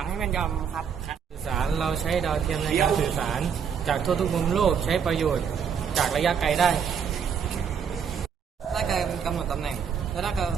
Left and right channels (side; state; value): left; quieter; 7.1 dB